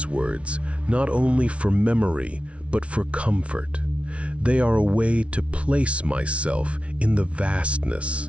words not only for memory, but for comfort. They are a way to place myself in the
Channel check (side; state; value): left; late; 0.062 ms